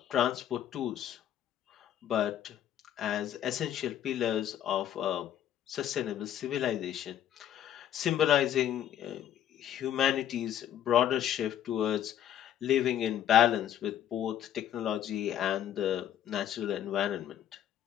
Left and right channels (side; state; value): right; quieter; 10.7 dB